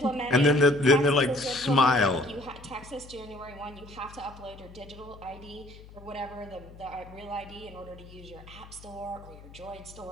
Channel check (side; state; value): left; noise; hum, 19 dB below the sound